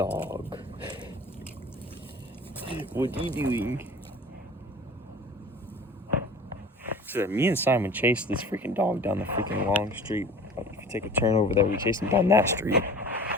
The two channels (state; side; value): normal; both; correlation 0.42